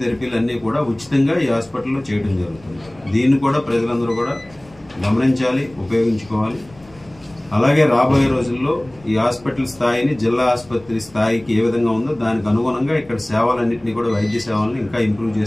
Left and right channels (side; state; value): left; noise; rumble, 25 dB below the sound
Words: అన్నీ కూడా ఉచితంగా ఈ హాస్పిటల్లో చేయడం జరుగుతుంది. దీన్ని కూడా ప్రజలందరూ కూడా గమనించాలి, ఉపయోగించుకోవాలి. అలాగే రాబోయే రోజుల్లో ఈ హాస్పిటల్ స్థాయిని జిల్లా ఆసుపత్రి స్థాయికి ఏ విధంగా ఉందో దానికి అనుగుణంగా ఇక్కడ సేవలన్నింటినీ కూడా, వైద్య సేవలను ఇంకా ఇంప్రూవ్